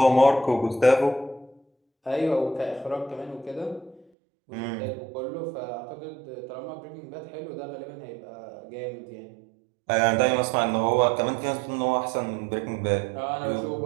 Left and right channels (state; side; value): drops out; left; at 4.0 s